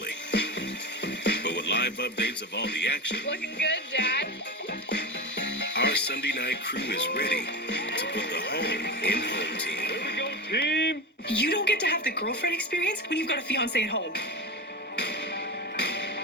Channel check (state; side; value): normal; both; correlation 0.23